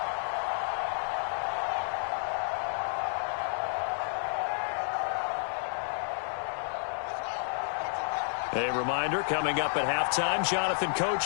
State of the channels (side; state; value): right; silent; digital silence